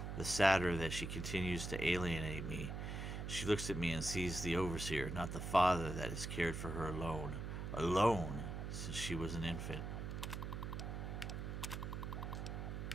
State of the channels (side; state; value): right; noise; hum, 5 dB below the sound